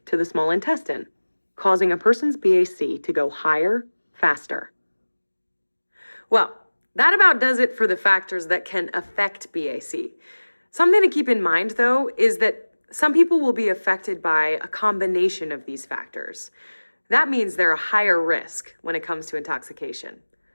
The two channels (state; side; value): inverted; both; correlation -1.00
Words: to the small intestine, causing a person's BAC to go higher, faster. Well, that about does it for the factors that can affect BAC. Something to keep in mind, though, is that some people will be affected by a combination of these factors. That means they're a higher risk when it comes to intoxication.